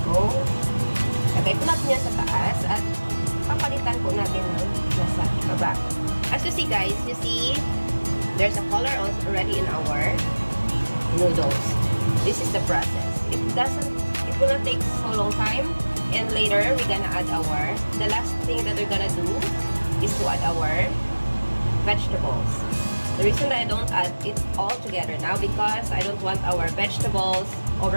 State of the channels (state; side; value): inverted; both; correlation -1.00